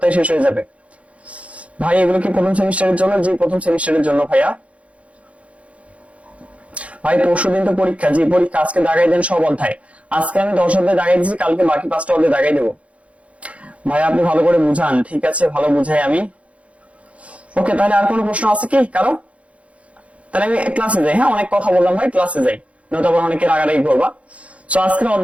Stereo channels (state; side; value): late; left; 0.064 ms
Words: শেষ হয়ে যাবে। ভাই এগুলো কি প্রথম সেমিস্টারের জন্য? জি প্রথম সেমিস্টারের জন্য ভাইয়া। ভাই পরশুদিন তো পরীক্ষা। জি পরীক্ষা, আজকে দাগাই দেন সব অধ্যায়। আজকে আমি 10 অধ্যায় দাগাই দিচ্ছি, কালকে বাকি 5টা অধ্যায় দাগাই দেবো। ভাই আপনি ভালো করে বুঝান। ঠিক আছে, ভালো বুঝাই আমি। ওকে, তাহলে আর কোনো প্রশ্ন আছে কি কারো? তাহলে আমি ক্লাসে যাই। হ্যাঁ অনেক কথা বললাম ভাই, ক্লাসে যাই, নয়তো আবার অনেকে রাগারাগি করবা। তো আজকের